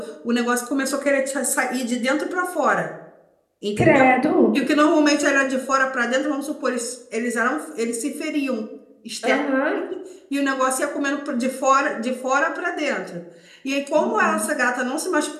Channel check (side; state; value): both; identical; correlation 1.00